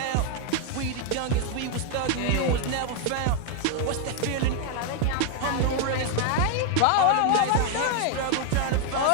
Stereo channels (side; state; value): both; different; correlation 0.01